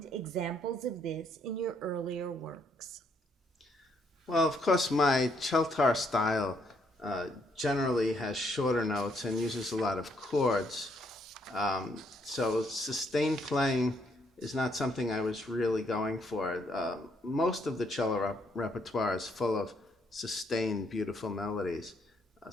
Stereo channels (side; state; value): both; normal; correlation 0.71